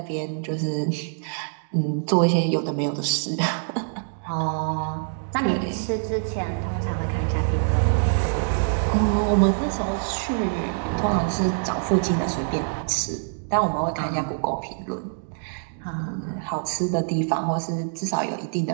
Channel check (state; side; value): silent; left; digital silence